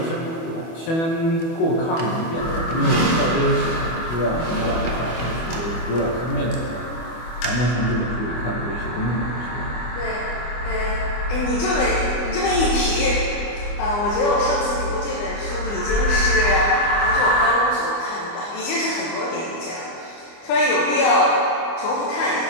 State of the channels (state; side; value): late; right; 24 ms